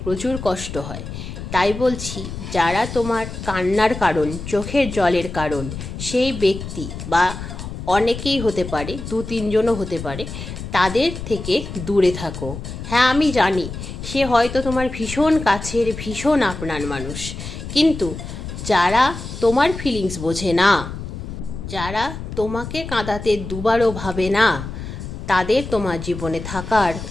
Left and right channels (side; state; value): left; noise; rumble, 9 dB below the sound